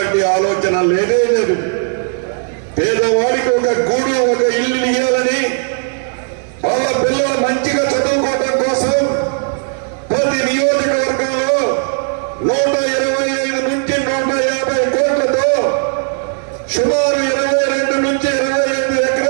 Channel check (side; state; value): left; silent; 56 dB below the other